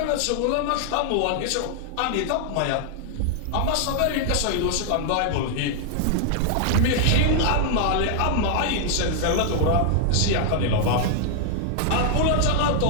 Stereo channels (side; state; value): both; different; correlation 0.00